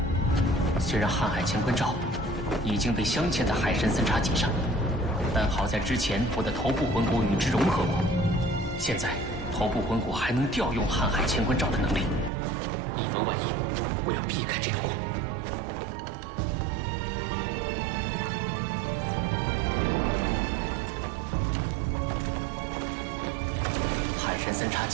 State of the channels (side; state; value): left; drops out; at 12.3 s